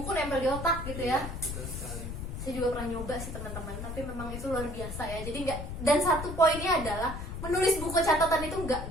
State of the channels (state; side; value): noise; left; rumble, 7 dB below the sound